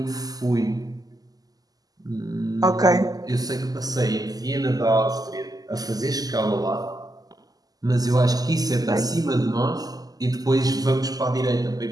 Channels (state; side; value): late; left; 0.18 ms